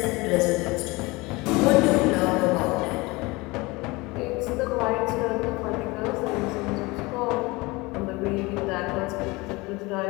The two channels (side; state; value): right; quieter; 23.5 dB